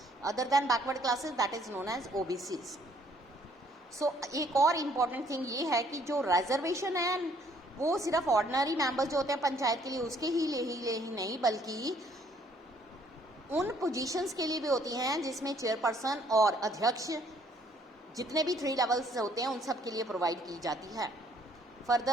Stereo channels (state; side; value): normal; both; correlation 0.63